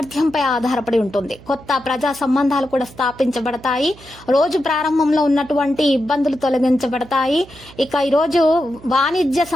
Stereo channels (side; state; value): right; noise; hum, 21 dB below the sound